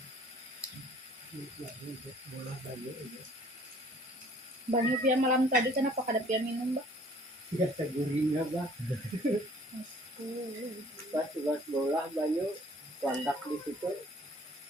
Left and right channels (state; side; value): normal; both; correlation 0.55